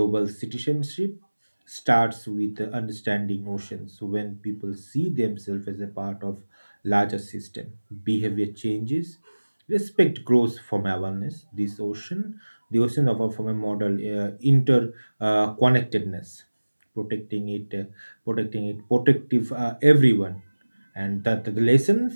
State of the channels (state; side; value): inverted; both; correlation -1.00